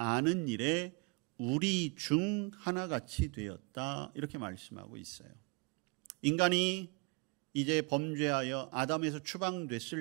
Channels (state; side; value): quieter; left; 30.5 dB